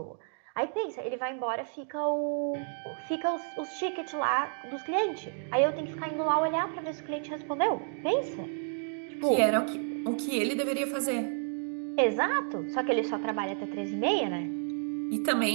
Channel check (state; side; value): silent; left; 57 dB below the other